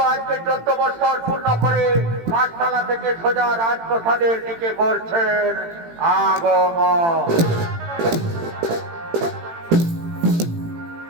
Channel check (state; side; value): late; left; 18 ms